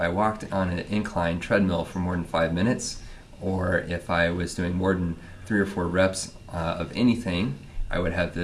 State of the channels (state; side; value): identical; both; correlation 1.00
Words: walked on an incline treadmill for more than 5 minutes, or if I was doing more than 3 or 4 reps of anything, I would have